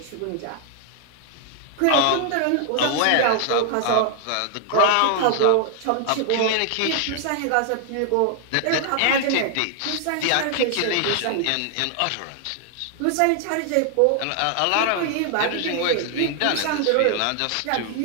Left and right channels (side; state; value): both; different; correlation 0.00